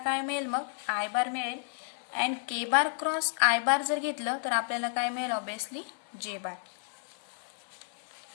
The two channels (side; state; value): right; silent; 57 dB below the other